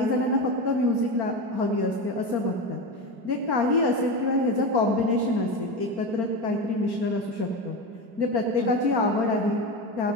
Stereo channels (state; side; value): late; left; 4.3 ms